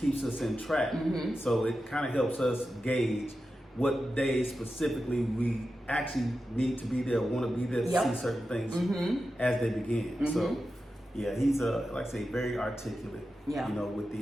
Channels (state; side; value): normal; both; correlation 0.91